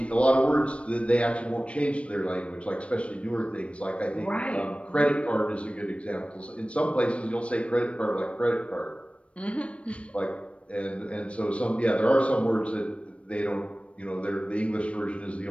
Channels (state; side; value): late; right; 0.062 ms